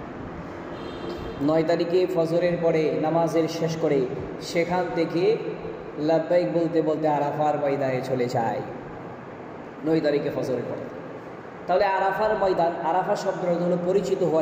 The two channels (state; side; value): identical; both; correlation 1.00